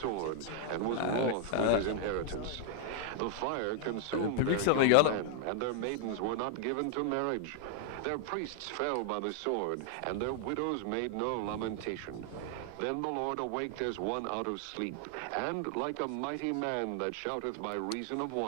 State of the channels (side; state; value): both; different; correlation 0.00